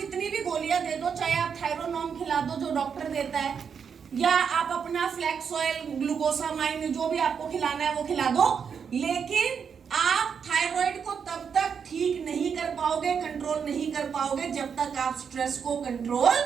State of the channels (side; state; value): left; quieter; 6.8 dB